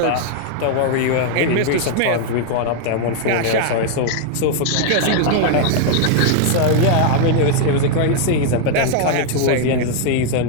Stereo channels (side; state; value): both; different; correlation 0.00